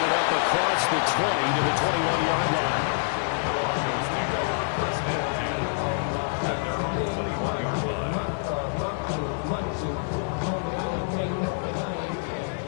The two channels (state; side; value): silent; right; digital silence